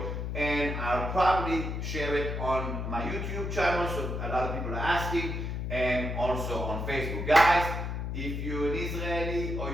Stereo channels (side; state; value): left; noise; hum, 3 dB below the sound